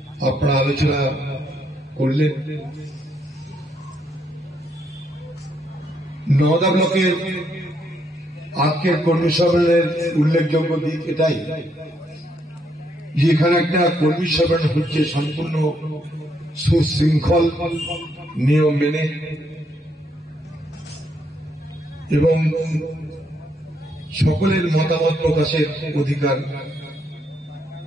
আপনারা আলোচনা করলেন। নওদা ব্লকের আজকের কর্মী সম্মেলনের উল্লেখযোগ্য দিক এটাই যে এখানে একটা কর্মী সম্মেলন হচ্ছে সম্পূর্ণ সুশৃঙ্খল নিয়ম মেনে এবং সকলের মতামত প্রকাশের অধিকার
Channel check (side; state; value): both; normal; correlation 0.74